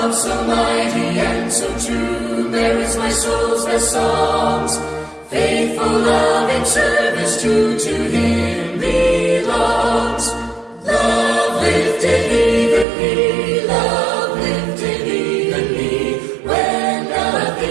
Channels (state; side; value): drops out; left; at 12.9 s